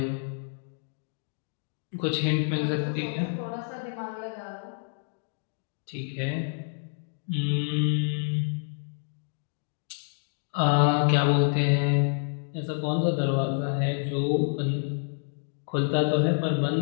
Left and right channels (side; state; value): right; silent; digital silence